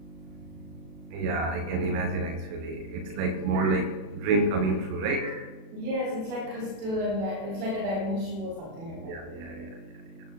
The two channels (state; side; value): late; left; 37 ms